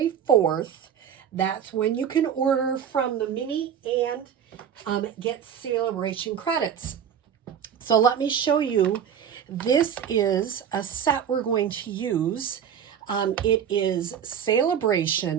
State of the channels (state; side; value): quieter; left; 8.5 dB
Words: 4th. That's when you can order from the mini and get Celebration credits. So let me show you. This is a set we're going to use. It is